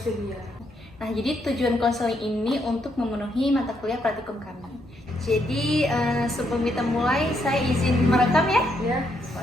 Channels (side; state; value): both; normal; correlation 0.76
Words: Nah, jadi tujuan konseling ini untuk memenuhi mata kuliah praktikum kami. Jadi, sebelum kita mulai, saya izin merekam ya? Ya.